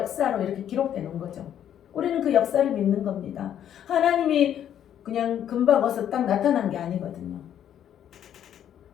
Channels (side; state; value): right; quieter; 10.0 dB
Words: 이렇게 기록해 놓은 거죠. 우리는 그 역사를 믿는 겁니다. 하나님이 그냥 금방 어서 딱 나타난 게 아니거든요.